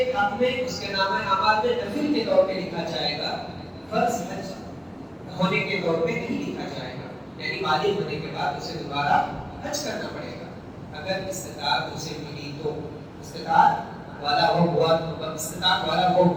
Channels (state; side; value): identical; both; correlation 1.00